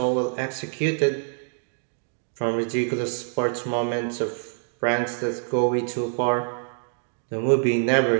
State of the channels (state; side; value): silent; left; 57 dB below the other